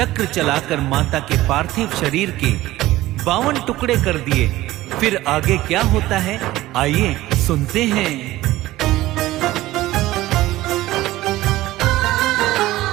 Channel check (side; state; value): left; quieter; 16.6 dB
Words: चलाकर माता के पार्थिव शरीर के 52 टुकड़े कर दिए। फिर आगे क्या होता है, आइए सुनते हैं।